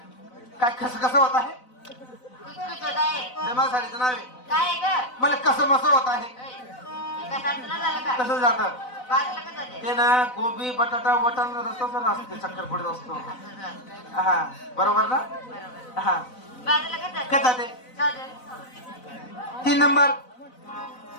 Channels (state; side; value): late; right; 4.0 ms